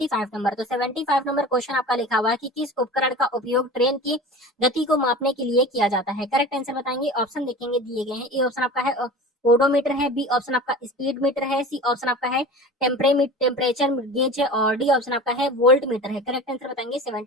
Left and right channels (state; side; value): normal; both; correlation 0.35